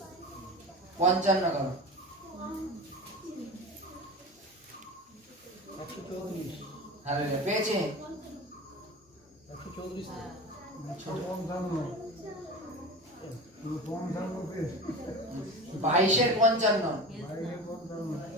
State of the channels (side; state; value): both; normal; correlation 0.30